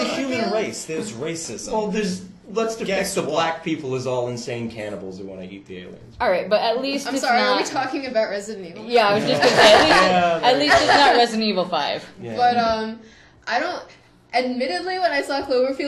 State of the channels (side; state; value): both; identical; correlation 1.00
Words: human race. There's racism. Well, let's depict Guess the what? black people as all insane cannibals who want to eat the aliens. Alright, but at least I'm it's sorry, not... are we talking about Resident Evil? Yeah, I was just gonna say, at least it's not Resident Evil 5. Yeah. But, I don't... Admittedly, when I saw